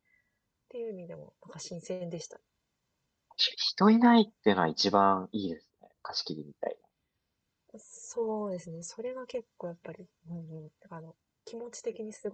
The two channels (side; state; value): both; identical; correlation 1.00